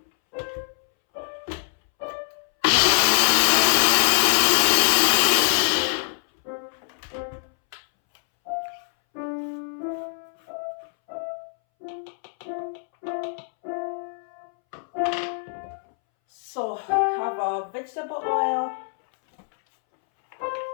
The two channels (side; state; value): right; silent; 62 dB below the other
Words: So have our vegetable oil.